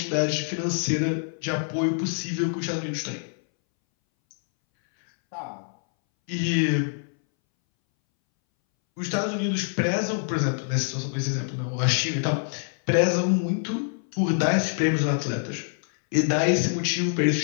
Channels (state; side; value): silent; right; 61 dB below the other